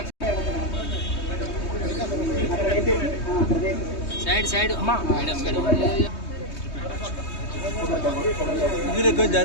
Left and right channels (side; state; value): right; late; 3.2 ms